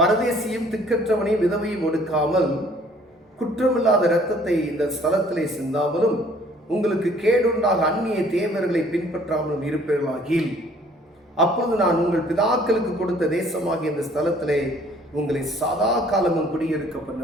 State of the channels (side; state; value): both; normal; correlation 0.57